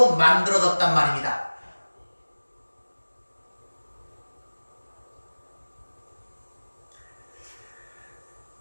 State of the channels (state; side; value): inverted; both; correlation -1.00